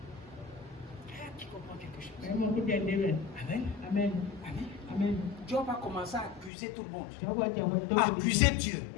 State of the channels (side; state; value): right; drops out; at 6.5 s